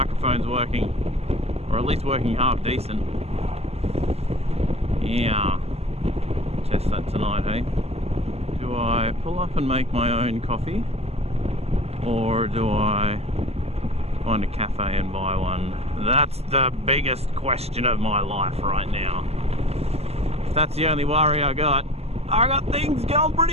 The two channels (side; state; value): left; late; 0.30 ms